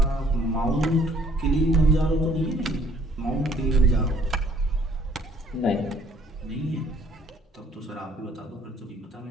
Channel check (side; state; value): both; normal; correlation 0.61